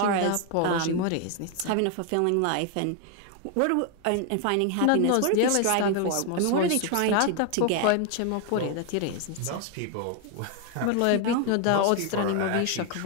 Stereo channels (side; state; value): both; different; correlation 0.01